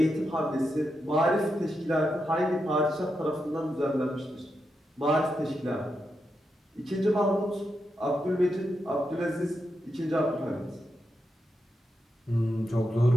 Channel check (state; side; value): normal; both; correlation 0.86